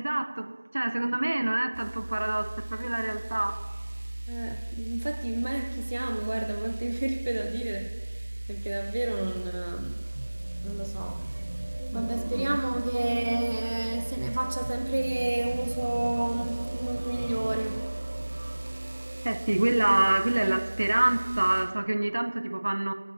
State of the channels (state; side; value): inverted; both; correlation -1.00